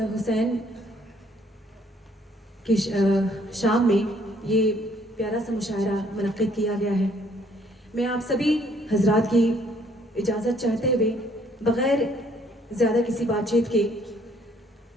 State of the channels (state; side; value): normal; both; correlation 0.64